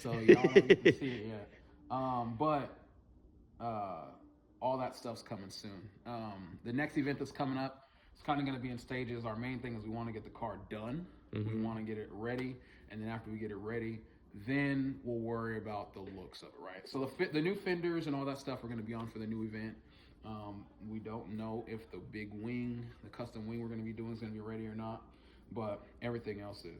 y'all don't get to see it yet. But all that stuff's coming soon. The next event that's coming up, it's kind of going to be in stages. Our main thing is we want to get the car done. We want to get it ready, and then after we get it ready, then we'll worry about the looks of it, right? So the new fenders and all that stuff are going to be on for the new event. We don't know if the big wing, the custom wing we're going to be doing is going to be ready or not, but everything else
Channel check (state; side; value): identical; both; correlation 1.00